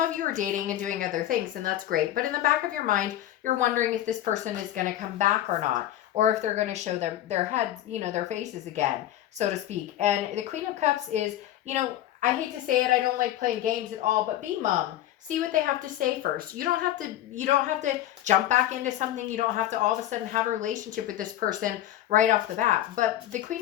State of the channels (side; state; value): right; quieter; 13.0 dB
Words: you are dating and doing other things, and that's great. But in the back of your mind, you're wondering if this person is going to come back or not, or if they're going to show their heads, their faces again, so to speak. And the Queen of Cups is, I hate to say it, I don't like playing games at all, but be mum. See what they have to say first. You don't have to jump back into something. You don't have to all of a sudden have a relationship with this person right off the bat. But the Queen